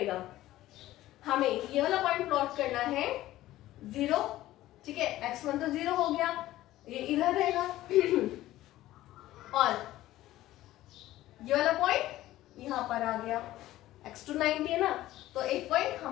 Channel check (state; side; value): quieter; right; 15.3 dB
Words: हमें ये वाला पॉइंट प्लॉट करना है 0। ठीक है, x1 तो 0 हो गया, ये इधर रहेगा और ये वाला पॉइंट यहाँ पर आ गया, x2 90 है ना, तो एक पॉइंट